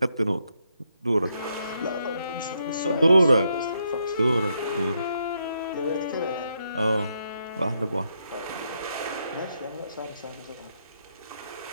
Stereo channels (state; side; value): inverted; both; correlation -0.78